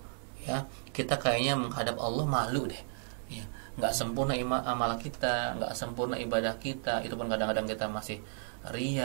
ya, kita kayaknya menghadap Allah malu deh ya. Gak sempurna amal kita, gak sempurna ibadah kita. Itu pun kadang-kadang kita masih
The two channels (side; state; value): left; silent; digital silence